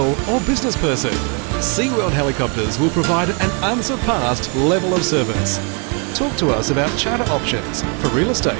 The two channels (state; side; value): quieter; left; 36.8 dB